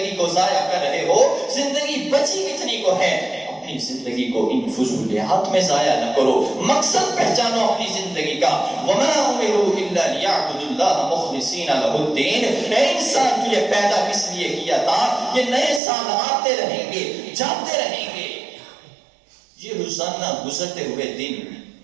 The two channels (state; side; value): drops out; left; at 15.8 s